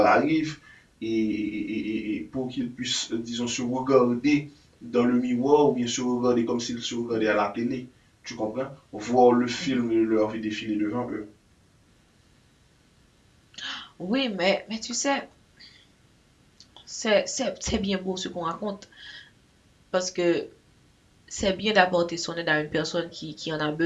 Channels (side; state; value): both; identical; correlation 1.00